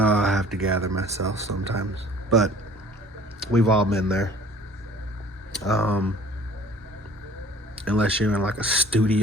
I have to gather myself sometimes, but we've all been there. Unless you're in like a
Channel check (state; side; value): normal; both; correlation 0.50